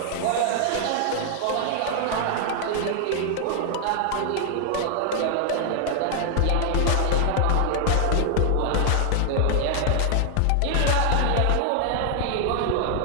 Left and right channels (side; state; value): both; different; correlation 0.00